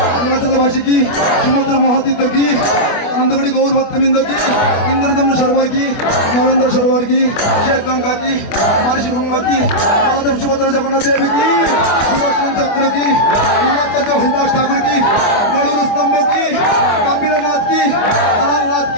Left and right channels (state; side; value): late; right; 25 ms